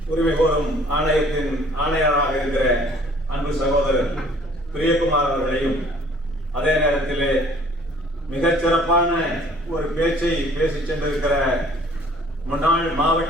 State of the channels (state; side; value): normal; both; correlation 0.55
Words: உரிமை கோரும் ஆணையத்தின் ஆணையராக இருக்கிற அன்பு சகோதரர் பிரியகுமார் அவர்களையும் அதே நேரத்தில் மிகச்சிறப்பான ஒரு பேச்சை பேசி சென்றிருக்கிற முன்னாள்